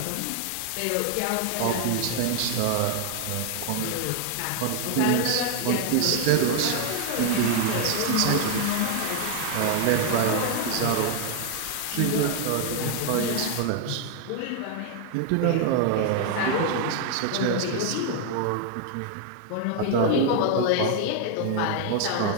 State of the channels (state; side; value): different; both; correlation 0.00